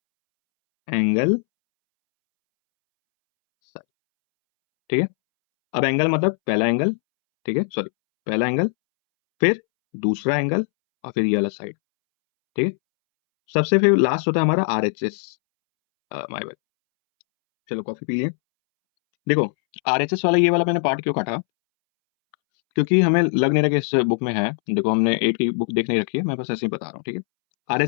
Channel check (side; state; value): right; silent; 65 dB below the other